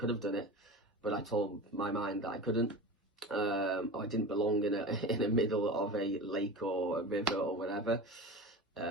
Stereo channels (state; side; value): normal; both; correlation 0.30